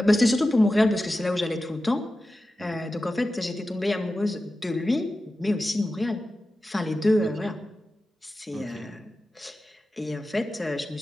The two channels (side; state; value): both; normal; correlation 0.93